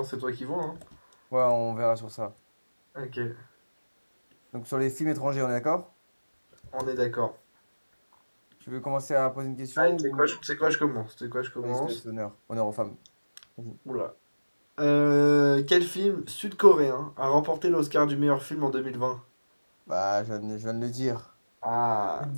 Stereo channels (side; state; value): both; inverted; correlation -1.00